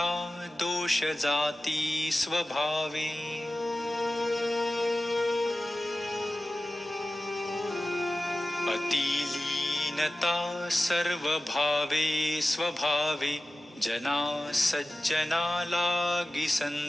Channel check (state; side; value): normal; both; correlation 0.95